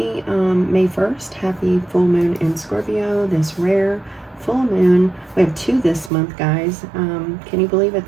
May 1st. Happy full moon in Scorpio, this rare full moon. We have two this month, guys. Can you believe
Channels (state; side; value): drops out; left; at 6.1 s